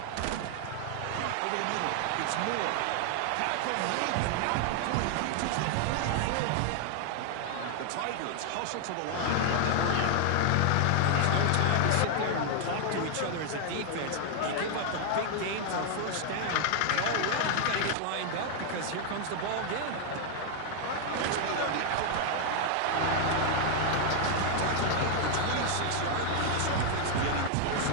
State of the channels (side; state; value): both; different; correlation 0.00